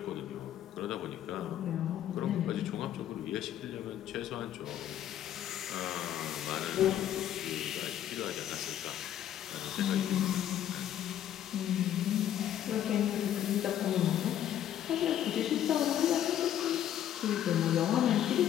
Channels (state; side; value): quieter; right; 11.1 dB